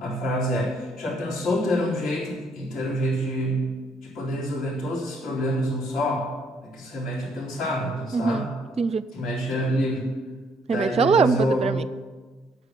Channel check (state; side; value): normal; both; correlation 0.68